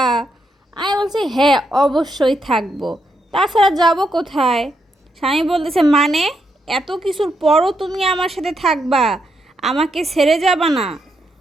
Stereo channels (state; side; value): normal; both; correlation 0.80